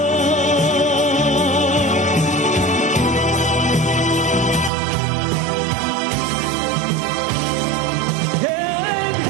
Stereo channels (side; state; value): left; drops out; at 4.7 s